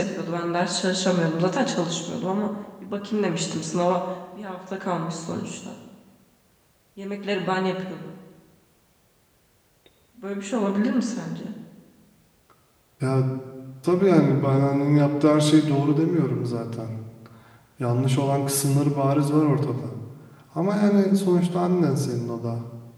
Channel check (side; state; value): both; identical; correlation 1.00